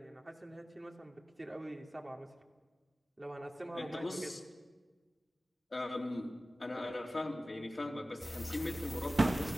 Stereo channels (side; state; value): both; normal; correlation 0.96